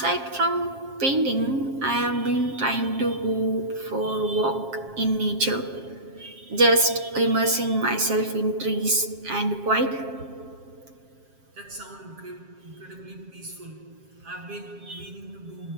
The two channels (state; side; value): late; left; 7.4 ms